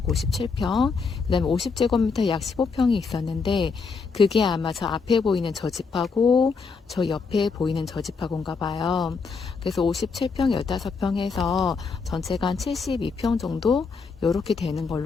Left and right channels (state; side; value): quieter; right; 4.9 dB